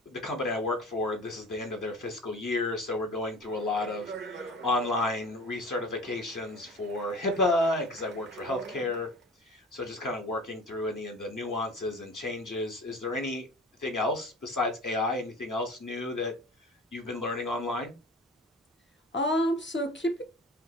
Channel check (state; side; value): normal; both; correlation 0.39